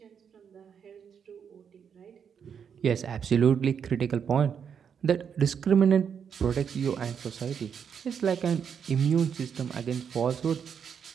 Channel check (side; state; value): left; quieter; 7.3 dB